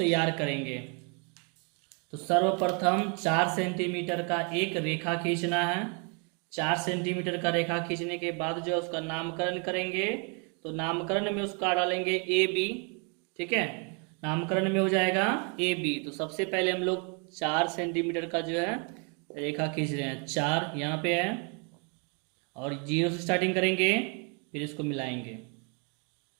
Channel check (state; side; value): quieter; left; 36.3 dB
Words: करेंगे। तो सर्वप्रथम 4 सेंटीमीटर का एक रेखा खींचना है। 4 सेंटीमीटर का रेखा खींचने के बाद जो है उसका नामकरण करेंगे। तो नामकरण में उसका डालेंगे ए बी। ठीक है, नामकरण में हो जाएगा ए बी। तो सबसे पहले हम लोग 4 सेंटीमीटर का जो है रेखा खींच रहे हैं। 4 यहाँ पे है और 0 से स्टार्टिंग करेंगे, फिर इसको मिलाएंगे।